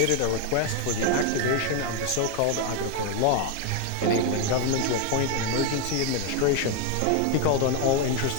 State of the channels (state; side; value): different; both; correlation 0.01